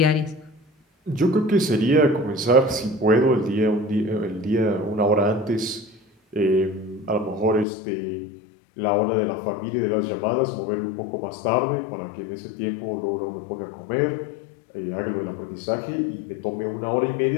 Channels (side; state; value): right; drops out; at 7.7 s